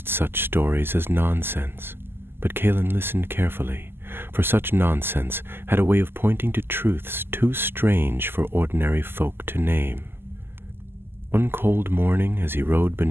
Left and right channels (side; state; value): left; late; 0.11 ms